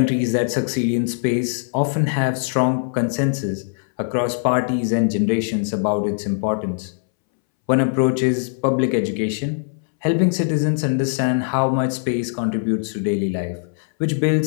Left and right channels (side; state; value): right; silent; 64 dB below the other